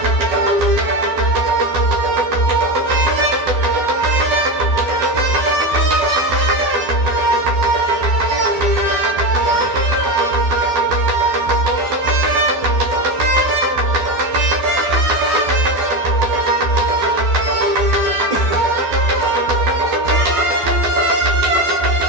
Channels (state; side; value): late; left; 12 ms